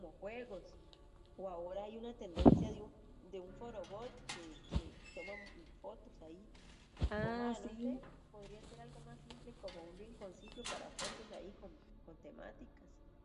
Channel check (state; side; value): identical; both; correlation 1.00